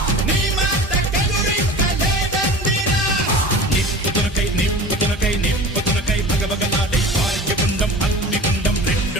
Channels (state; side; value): normal; both; correlation 0.37